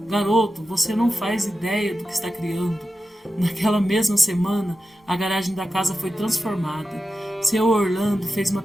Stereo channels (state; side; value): normal; both; correlation 0.92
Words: Garoto, você não faz ideia do que está criando. Naquela mesma semana, a garagem da casa foi transformada. Seu Orlando fez uma